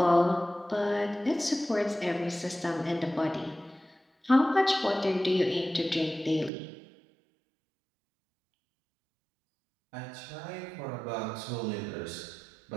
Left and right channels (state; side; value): drops out; left; at 6.5 s